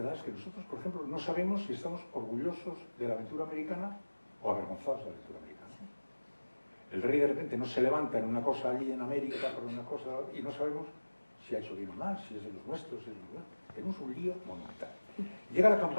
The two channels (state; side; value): inverted; both; correlation -1.00